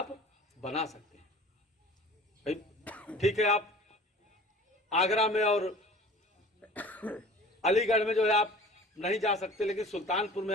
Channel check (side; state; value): both; normal; correlation 0.44